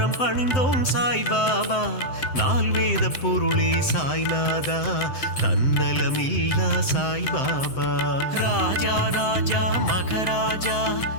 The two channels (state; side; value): late; right; 7.8 ms